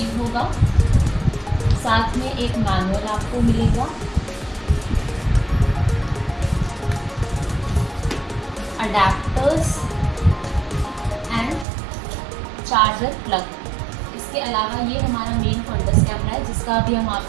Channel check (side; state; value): left; drops out; at 11.7 s